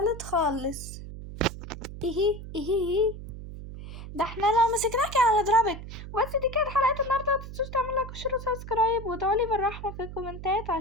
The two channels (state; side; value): noise; right; hum, 11 dB below the sound